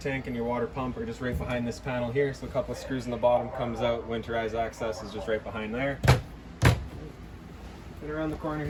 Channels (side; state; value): both; identical; correlation 1.00